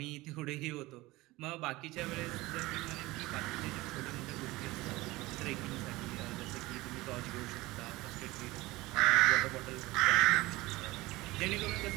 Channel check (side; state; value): left; quieter; 20.0 dB